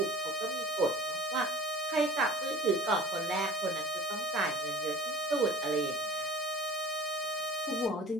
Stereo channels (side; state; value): both; normal; correlation 0.41